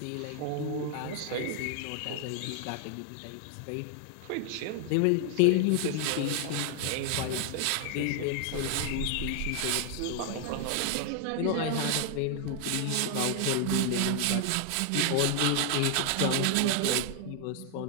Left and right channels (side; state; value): both; different; correlation 0.00